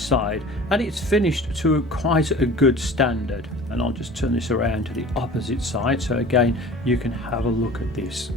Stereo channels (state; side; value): normal; both; correlation 0.42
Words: and it's finished to quite a good standard. And I'll just turn this around to the opposite side so again you can have a look at this.